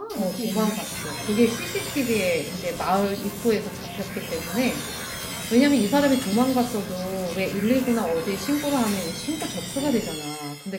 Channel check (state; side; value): identical; both; correlation 1.00